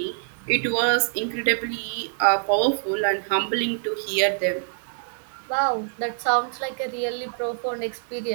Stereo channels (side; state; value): left; silent; digital silence